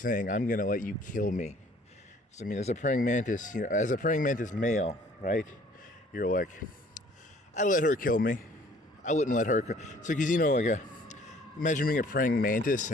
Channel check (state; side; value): normal; both; correlation 0.56